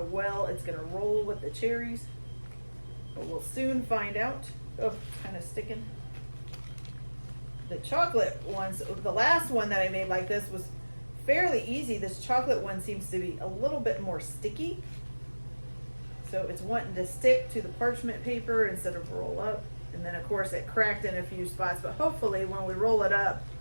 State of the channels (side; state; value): both; inverted; correlation -1.00